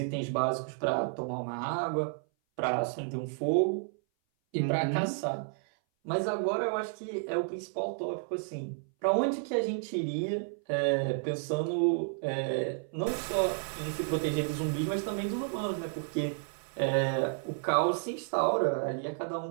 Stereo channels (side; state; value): left; silent; 57 dB below the other